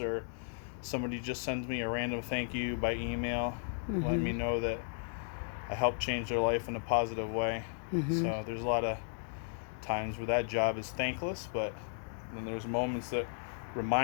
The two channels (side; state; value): right; silent; digital silence